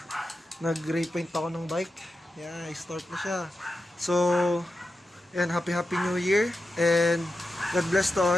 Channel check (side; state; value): both; normal; correlation 0.90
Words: nag-repaint ako ng bike. Yeah, start na siya. So yan, happy New Year and God bless to